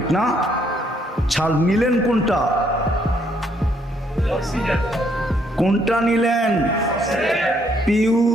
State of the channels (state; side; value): normal; both; correlation 0.70